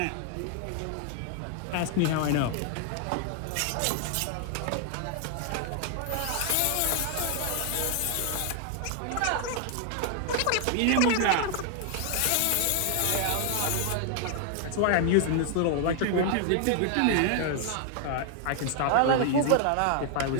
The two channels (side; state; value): both; different; correlation 0.00